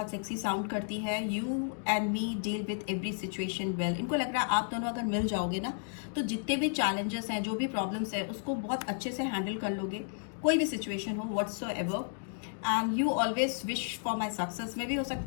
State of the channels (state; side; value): silent; right; digital silence